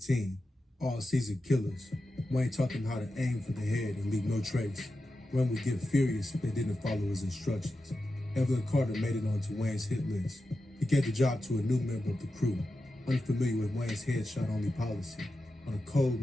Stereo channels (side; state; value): both; normal; correlation 0.91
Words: team. All seasoned killers. Wayne taught them how to aim for the head and leave no trace. Wayne would get furious if they didn't follow his instructions. Evelyn Carter made it onto Wayne's hit list. He gave the job to a new member of the crew, unfamiliar with Wayne's headshot-only policy. On a cold